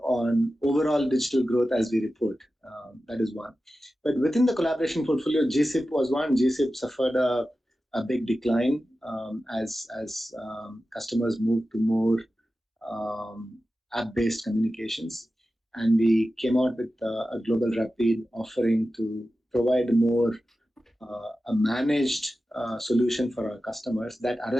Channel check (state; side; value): normal; both; correlation 0.93